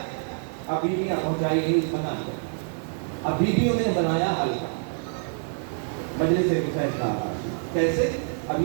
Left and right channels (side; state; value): left; silent; 61 dB below the other